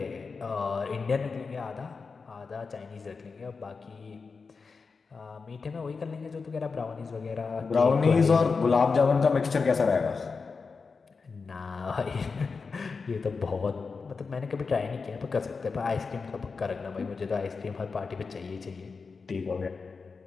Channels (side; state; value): right; quieter; 4.8 dB